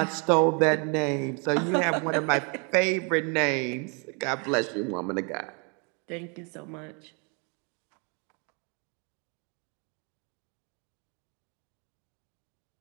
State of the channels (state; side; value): quieter; left; 34.8 dB